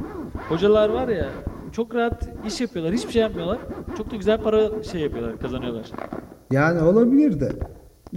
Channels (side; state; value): both; identical; correlation 1.00